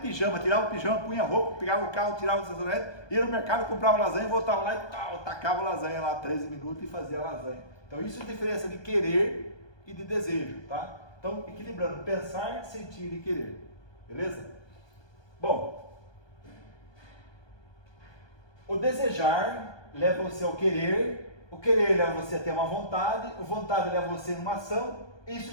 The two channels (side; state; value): right; late; 1.2 ms